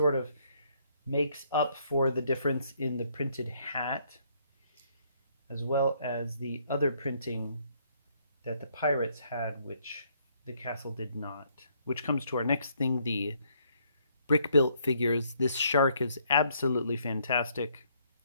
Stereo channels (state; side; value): inverted; both; correlation -0.68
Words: of makes up for the difference in the printed hat, as well as the other printing that the pirates had, which the castle did not. Which comes to our next thing, the brick-built figures. This shark is absolutely fantastic.